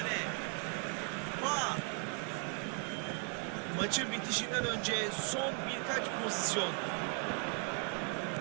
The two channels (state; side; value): quieter; left; 35.4 dB